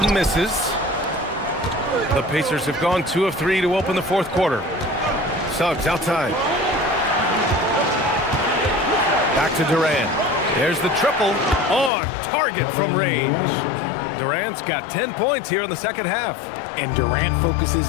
misses. The Pacers have gone 2 of 3 to open the fourth quarter. Suggs outside. Back to Durant. There's the triple on target from range. Durant's got 10 points here in the second half. And Durant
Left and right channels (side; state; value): right; drops out; at 11.9 s